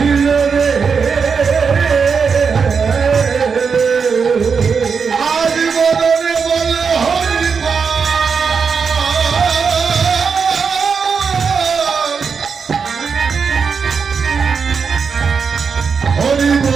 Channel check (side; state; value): left; quieter; 5.7 dB